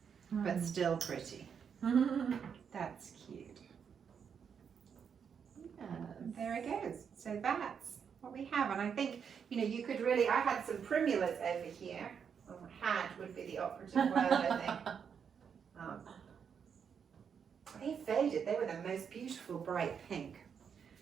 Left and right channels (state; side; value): quieter; left; 7.1 dB